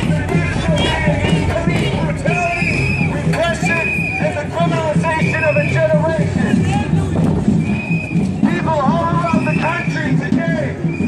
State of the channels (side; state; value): both; identical; correlation 1.00